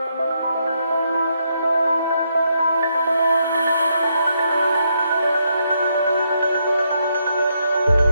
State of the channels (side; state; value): both; inverted; correlation -0.77